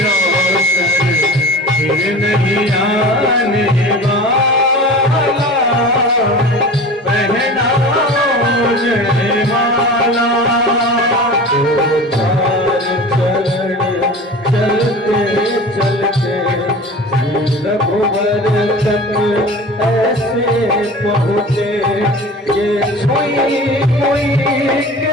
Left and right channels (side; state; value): both; normal; correlation 0.36